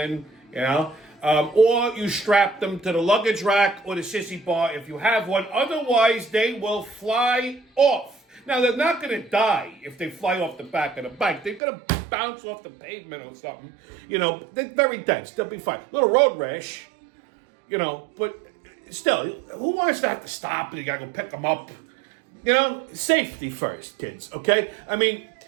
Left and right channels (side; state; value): left; drops out; at 11.6 s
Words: or you strap them to the luggage rack or the sissy bar if you have one. Otherwise, they will fly off. Now, they're not going to die if they fly off the back of the bike. They're going to bounce off the pavement or something. They're very dense. They'll be fine. Little road rash, but still, who wants to have to stop and you got to go pick them up? Safety first, kids, okay? I mean,